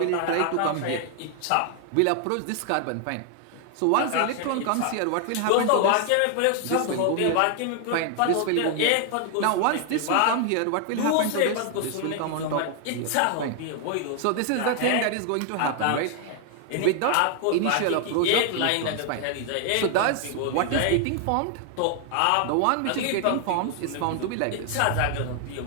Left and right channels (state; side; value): different; both; correlation 0.00